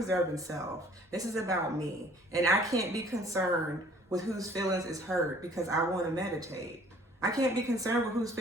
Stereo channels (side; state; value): both; normal; correlation 0.55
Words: self. This is about me. And I can't be concerned with whose feelings is hurt because I want to meditate. I can't be concerned with whose